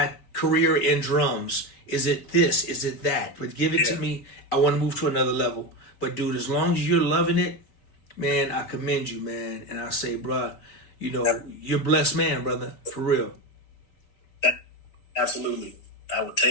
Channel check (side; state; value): right; late; 4.1 ms